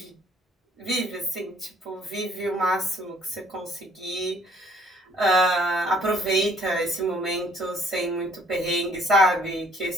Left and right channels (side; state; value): both; normal; correlation 0.60